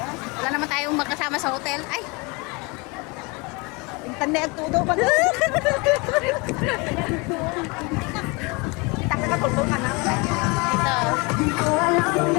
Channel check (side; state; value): right; quieter; 28.0 dB